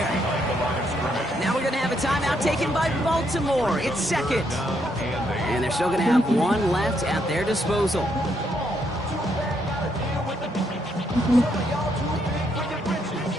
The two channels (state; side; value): normal; both; correlation 0.75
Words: Now we're going to have a timeout taken by Baltimore. It's second. And they're still going to have one left at their disposal.